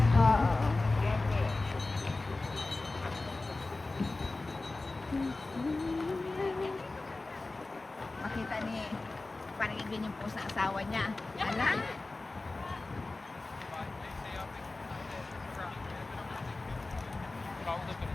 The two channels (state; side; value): quieter; right; 3.3 dB